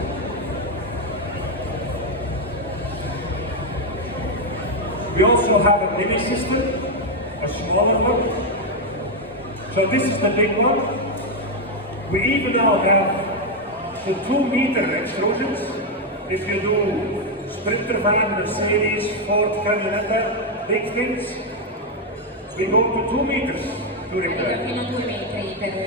We also have a mini system, a smaller one. So this is the big one. We even now have the 2-meter extrusions. If you do Sprinter van, Mercedes, Ford, Camionetta, big things, we go to 2 meters to repair. Fino a 2 metri per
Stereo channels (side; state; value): both; normal; correlation 0.03